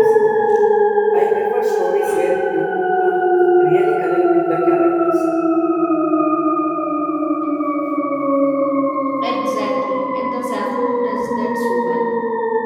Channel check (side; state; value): both; identical; correlation 1.00